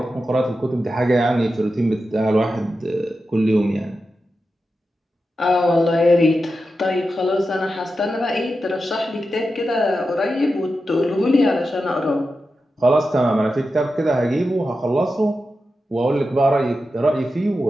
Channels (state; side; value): normal; both; correlation 0.90